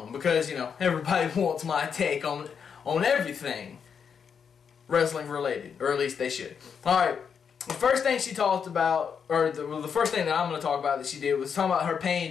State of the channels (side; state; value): right; quieter; 6.8 dB